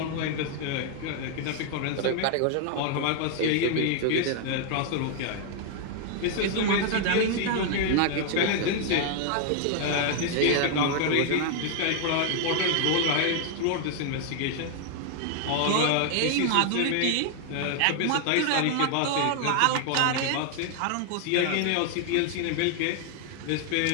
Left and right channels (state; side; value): different; both; correlation 0.00